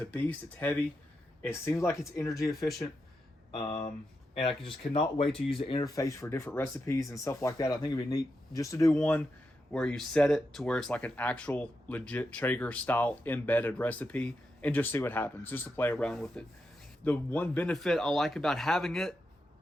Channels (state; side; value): normal; both; correlation 0.86